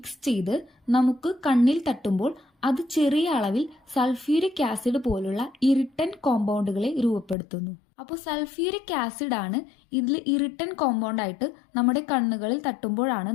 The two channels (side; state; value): right; drops out; at 7.4 s